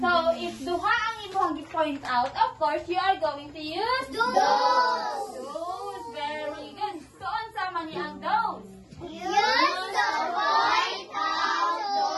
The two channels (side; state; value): both; identical; correlation 1.00